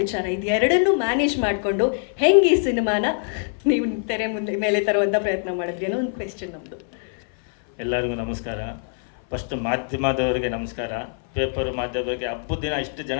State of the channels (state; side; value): silent; right; 58 dB below the other